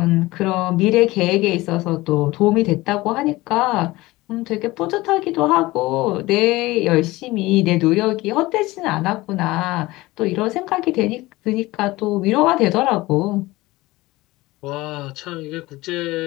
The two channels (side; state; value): right; quieter; 19.6 dB